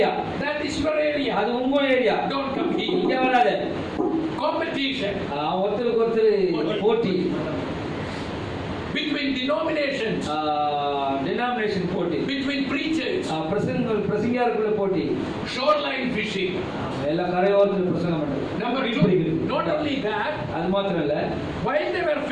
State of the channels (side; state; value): both; identical; correlation 1.00